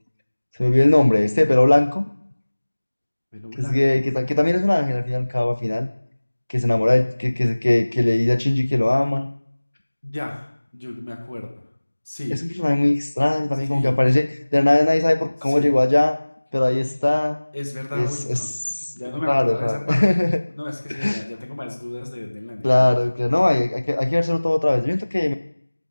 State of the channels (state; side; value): inverted; both; correlation -1.00